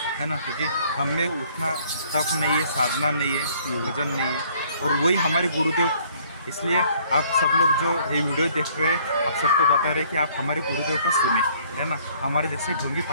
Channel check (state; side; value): inverted; both; correlation -0.60